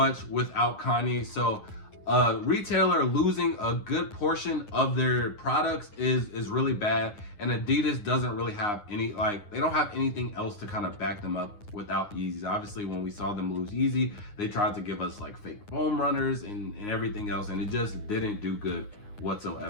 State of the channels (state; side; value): late; right; 9.6 ms